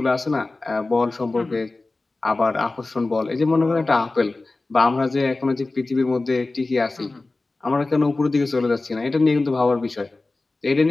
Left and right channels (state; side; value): quieter; right; 3.3 dB